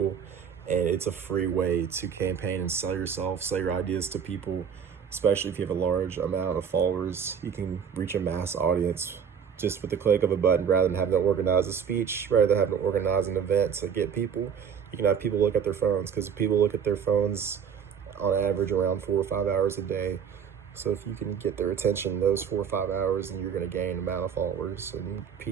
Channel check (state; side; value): quieter; left; 7.4 dB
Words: And it's a free way to campaign and sell yourself, sell your ideas to people, especially if you have a large amount of followers. You can reach a mass audience just with the click of a button rather than having to organize a speech, rather than having to organize an event to get people. You can have people look at their phones because people look at their phones on average around 4 or 5 hours a day. So if you can get their attention those 4 or 5 hours, then you're going to gain an amount of followers and